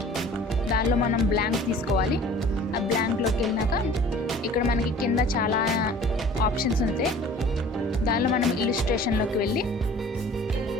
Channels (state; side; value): normal; both; correlation 0.48